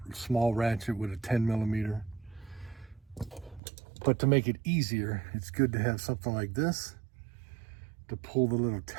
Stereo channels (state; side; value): drops out; left; at 3.6 s